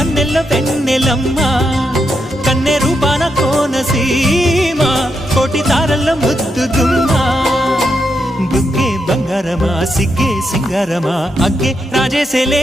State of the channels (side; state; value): both; normal; correlation 0.82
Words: వెన్నెలమ్మా కన్నె రూపాన కోనసీమా కోటి తారల్లో ముద్దుగుమ్మా బుగ్గే బంగారమా సిగ్గే సింగారమా అగ్గే